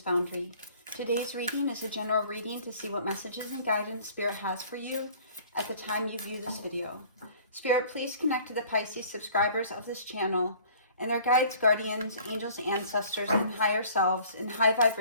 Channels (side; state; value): both; inverted; correlation -0.52